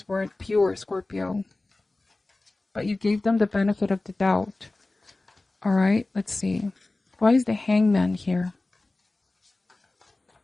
weren't pure, Scorpio, but you gave them the benefit of the doubt. All right, let's see. Why is the Hangman here?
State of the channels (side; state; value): right; quieter; 3.0 dB